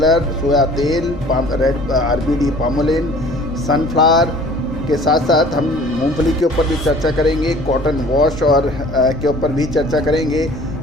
सोया तेल, रेड आरबीडी पामोलिन, सनफ्लावर के साथ साथ हम मूंगफली के ऊपर भी चर्चा करेंगे, कॉटन वॉश और के ऊपर भी चर्चा करेंगे,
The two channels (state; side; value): normal; both; correlation 0.49